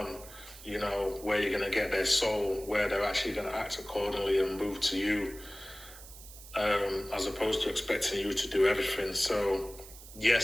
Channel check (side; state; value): right; noise; hiss, 17 dB below the sound